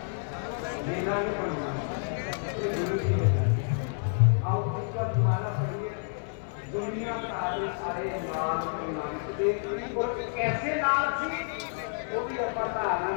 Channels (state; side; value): silent; right; 57 dB below the other